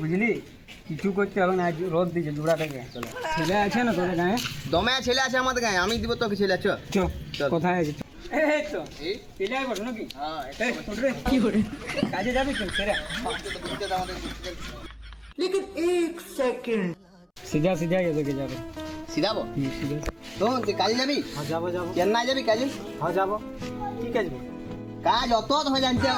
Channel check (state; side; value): identical; both; correlation 1.00